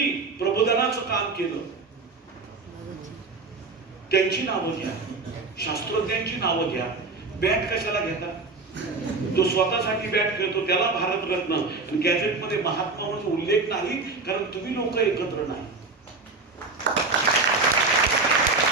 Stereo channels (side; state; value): left; quieter; 3.8 dB